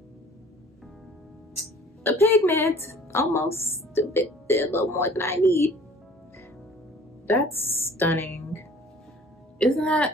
The pigment, almost a little more than I need. That's stunning. Isn't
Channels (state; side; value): normal; both; correlation 0.51